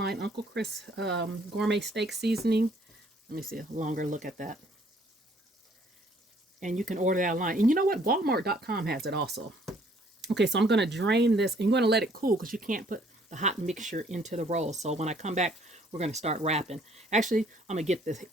Uncle Chris Gourmet Steak Seasoning. Let me see a longer look at that. And you can order that online. And you know what? Walmart.com has it also. Okay, so I'm going to drain this. And you're going to let it cool because you can't put the hot mixture into the roll. So when I come back, we're going to start wrapping. Actually, I'm going to get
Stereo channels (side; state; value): both; normal; correlation 0.62